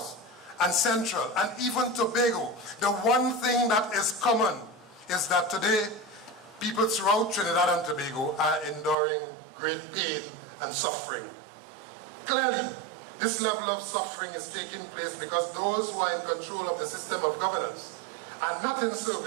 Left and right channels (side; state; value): left; drops out; at 9.0 s